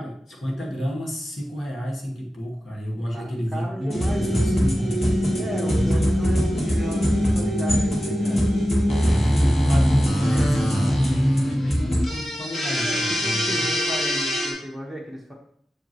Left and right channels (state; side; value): normal; both; correlation 0.93